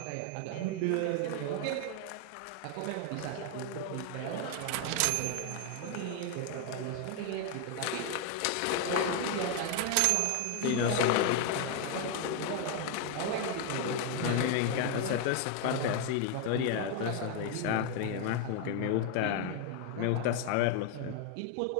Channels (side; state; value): both; different; correlation 0.01